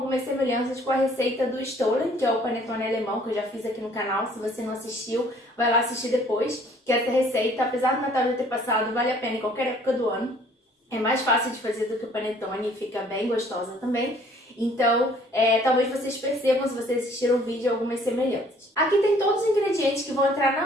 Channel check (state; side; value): normal; both; correlation 0.58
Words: semelhanças com a receita do stollen, que é o panetone alemão que eu já fiz aqui no canal. Se você não assistiu, vai lá assistir depois, que essa receita, apesar do Natal já ter passado, vale a pena em qualquer época do ano. É mais fácil de fazer do que o panetone e fica bem gostosa também. Então, talvez vocês percebam, se vocês assistiram o vídeo, algumas semelhanças. Aqui tem todos os ingredientes que vão entrar